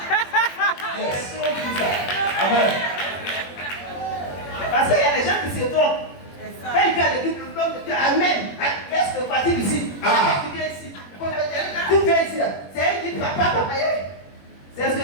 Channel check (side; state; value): right; late; 21 ms